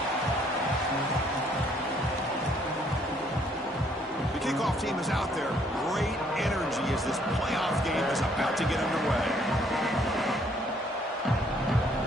Kickoff team is out there. Great energy as this playoff game is about to get underway.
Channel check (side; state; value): both; normal; correlation 0.65